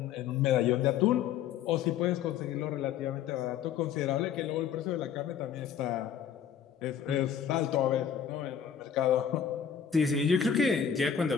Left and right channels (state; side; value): quieter; right; 8.3 dB